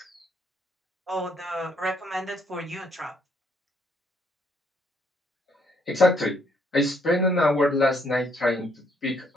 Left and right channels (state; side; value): normal; both; correlation 0.70